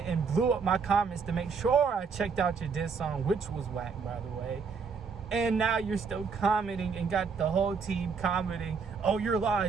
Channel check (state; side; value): quieter; left; 5.4 dB